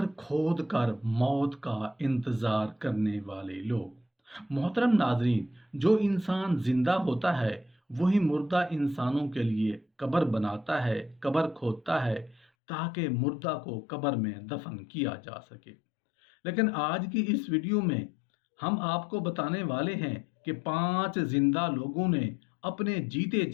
کھود کر موت کا انتظار کرنے والے لوگ۔ محترم ناظرین، جو انسان زندہ ہوتا ہے وہی مردہ انسانوں کے لیے قبر بناتا ہے، قبر کھودتا ہے تاکہ مردہ کو قبر میں دفن کیا جا سکے۔ لیکن آج کی اس ویڈیو میں ہم آپ کو بتانے والے ہیں کہ 5 زندہ لوگوں نے اپنے جیتے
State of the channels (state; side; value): drops out; right; at 12.5 s